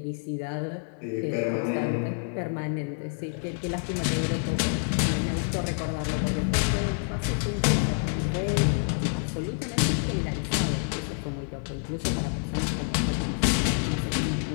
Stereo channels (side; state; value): right; silent; digital silence